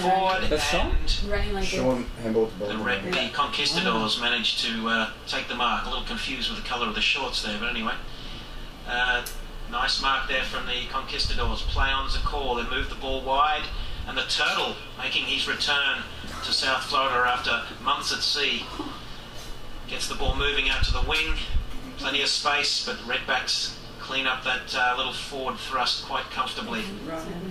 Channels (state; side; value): identical; both; correlation 1.00